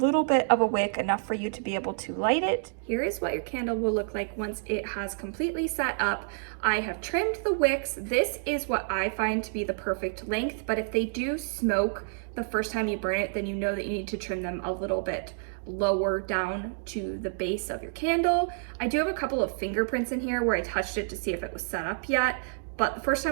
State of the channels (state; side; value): silent; left; digital silence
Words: bit of a wick, enough for you to be able to light it. Here is what your candle will look like once it has completely set up. I have trimmed the wicks. This is what I find to be the perfect length, but if they do smoke the first time you burn it, then you know that you need to trim them a little bit lower down to the base of your candle. I do have a couple of fingerprints in here where I touched it to see if it was set up yet, but the first